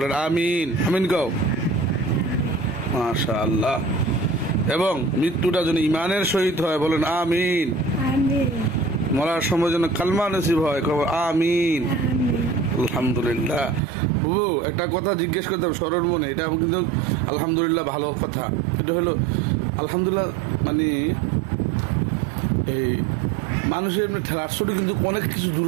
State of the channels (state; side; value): drops out; left; at 13.8 s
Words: আমিন আমিন গাও মাশাআল্লাহ এবং মৃত্যুটা যেন ইমানের সহিত হয় বলেন আমিন মরার সময় যেন কালমা নসিব হয় আমিন আলহামদুলিল্লাহ বুবু একটা কথা জিজ্ঞেস করতাম স্মরণ মনে এটা কিন্তু আলহামদুলিল্লাহ ভালো কথা এটা হলো আলহামদুলিল্লাহ মানে এই মানুষের এমনি ঠেলাশটি কিন্তু অনেক কিছু